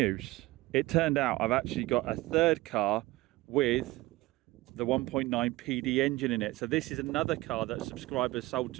it turned out I've actually got a 3rd car with the 1.9 PD engine in it. So this is another car that a subscriber sold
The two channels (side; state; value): left; quieter; 19.5 dB